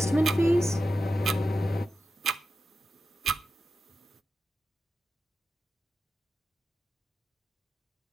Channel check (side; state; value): both; normal; correlation 0.91